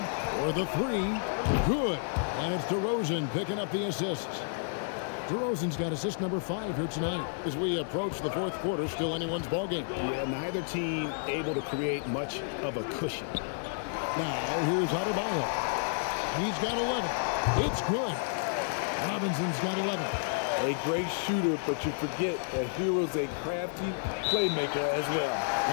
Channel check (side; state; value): right; silent; 57 dB below the other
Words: for the 3. Good. And it's DeRozan picking up the assist. DeRozan's got assist number 5 here tonight. As we approach the fourth quarter, still anyone's ballgame. Yeah, neither team able to create much of a cushion. Now, here's Adebayo. He's got 11. It's good. Robinson's got 11. A great shooter, but you forget that Hero's a crafty playmaker as well.